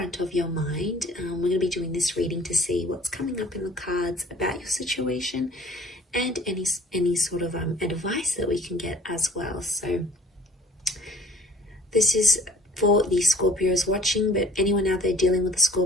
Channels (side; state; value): both; normal; correlation 0.54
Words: of your mind. We're going to be doing this reading to see what's coming up in the cards about your situation and any sort of advice that we can get as well. So this is for the Scorpios watching, but anyone out there dealing with a